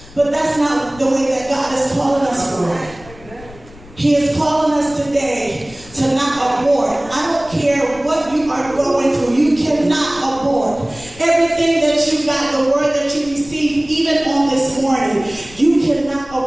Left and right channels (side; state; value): left; noise; rumble, 20 dB below the sound